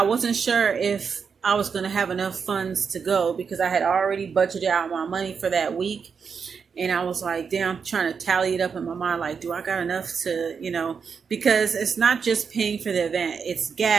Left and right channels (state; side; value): quieter; left; 6.1 dB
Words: wasn't sure if I was going to have enough funds to go because I had already budgeted out my money for that week. And I was like, damn, I'm trying to tally it up in my mind. Like, do I got enough to, because it's not just paying for the event. It's